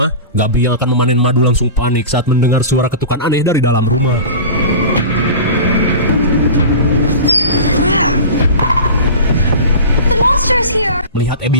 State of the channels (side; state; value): both; inverted; correlation -0.33